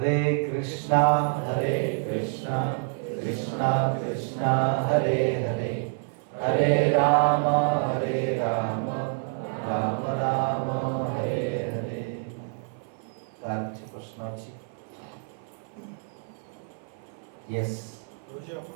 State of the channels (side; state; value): left; silent; 55 dB below the other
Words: कृष्णा कृष्णा कृष्णा हरे हरे हरे राम राम राम हरे हरे कार प्रश्न अच्छी यस रोजी आपण